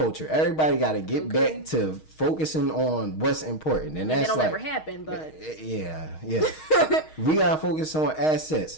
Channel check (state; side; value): late; right; 6.4 ms